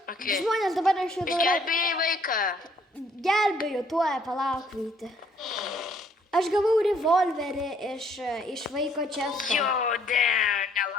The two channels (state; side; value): normal; both; correlation 0.65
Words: žmonės dabar aš jau darau... Gelbėjai vaiką. Gelbėju, tuoj palauk, Vyti. Aš gavau revolverį iš vaiko često. Jo,